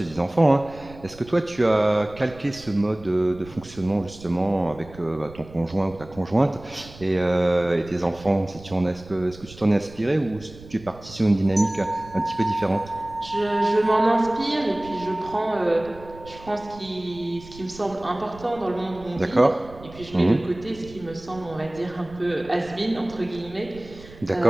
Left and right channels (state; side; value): noise; right; rumble, 19 dB below the sound